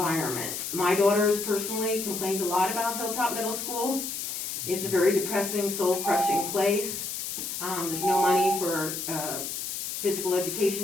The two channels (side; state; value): left; noise; hiss, 5 dB below the sound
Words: My daughters personally complained a lot about Hilltop Middle School. It's a very depressing, soul-crushing place. There's no money for physical